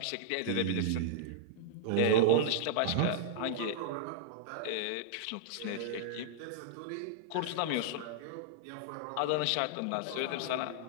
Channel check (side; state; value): both; different; correlation -0.02